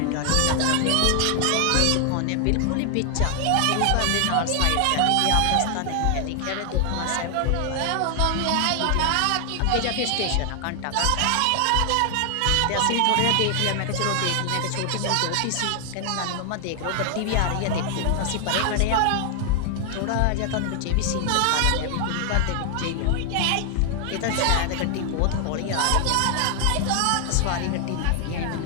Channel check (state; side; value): different; both; correlation 0.00